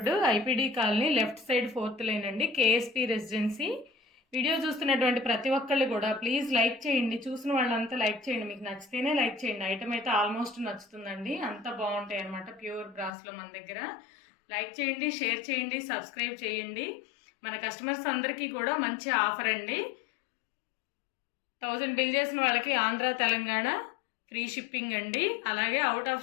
IPD colony, left side 4th line అండి, కేఎస్పీ రెసిడెన్సీ. వీడియో చూస్తున్నటువంటి ప్రతి ఒక్కళ్ళు కూడా ప్లీజ్ లైక్ చేయండి. చూసిన వాళ్ళంతా లైక్ చేయండి. మీకు నచ్చితేనే లైక్ చేయండి. ఐటమ్ అయితే ఆల్మోస్ట్ నచ్చుతుందండి. అంత బాగుంటాయి అనమాట ప్యూర్ బ్రాస్లో మన దగ్గర. లైక్ చేయండి, షేర్ చేయండి, సబ్స్క్రైబ్ చేయండి. మన కస్టమర్స్ అందరికీ కూడా మంచి ఆఫర్ అండి. 1000 బిల్ చేసిన వాళ్ళకి ఆంధ్ర, తెలంగాణ ఫ్రీ షిప్పింగ్ అండి. అలాగే అవుట్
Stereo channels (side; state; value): right; drops out; at 13.1 s